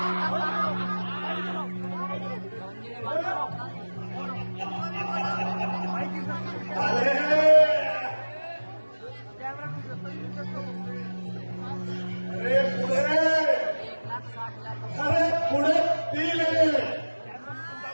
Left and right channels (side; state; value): both; inverted; correlation -1.00